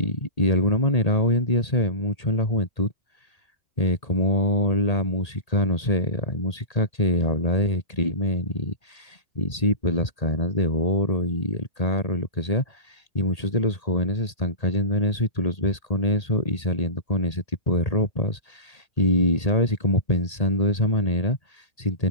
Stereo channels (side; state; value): right; late; 1.8 ms